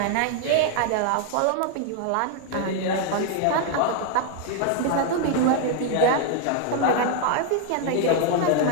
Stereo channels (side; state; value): both; different; correlation 0.00